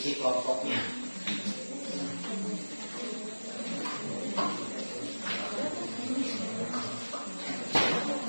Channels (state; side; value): inverted; both; correlation -1.00